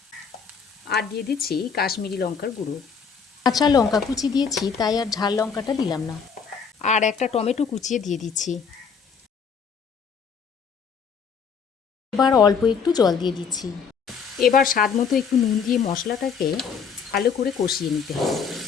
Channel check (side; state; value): right; quieter; 6.2 dB